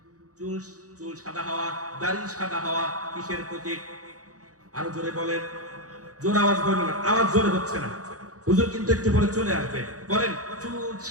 চুল সাদা হওয়া, দাড়ি সাদা হওয়া কিসের প্রতীক? আরো জোরে বলেন। জোর আওয়াজ বলেন না, আওয়াজ জোরে হচ্ছে না। হুজুর কিন্তু একটু পরে চলে আসবে। বলেন, চুল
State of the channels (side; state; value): left; late; 0.66 ms